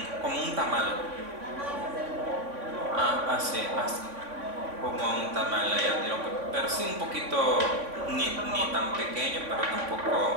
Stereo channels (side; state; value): left; late; 3.5 ms